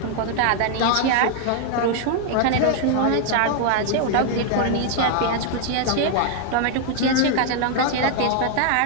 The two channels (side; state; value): both; different; correlation 0.00